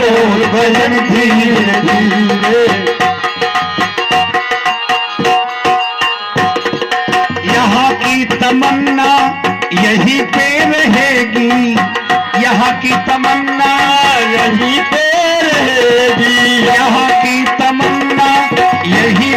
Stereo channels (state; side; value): identical; both; correlation 1.00